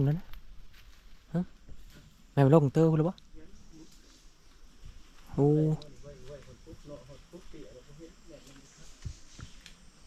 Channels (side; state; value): both; identical; correlation 1.00